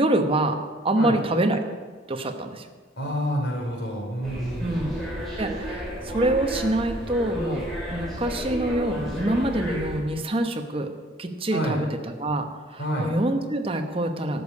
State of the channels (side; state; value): both; normal; correlation 0.58